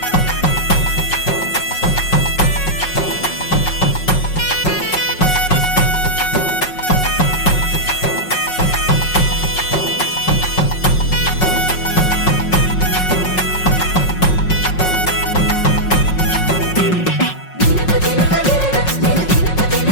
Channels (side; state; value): right; late; 5.5 ms